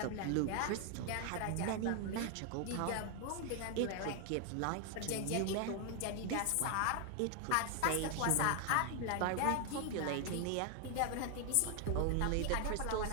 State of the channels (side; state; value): both; different; correlation 0.00